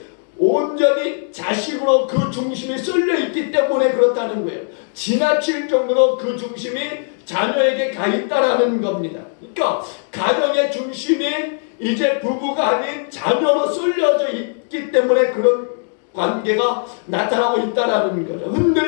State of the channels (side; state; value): right; silent; 59 dB below the other